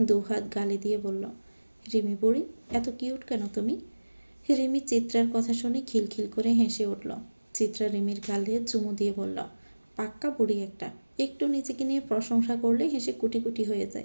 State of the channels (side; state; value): both; inverted; correlation -1.00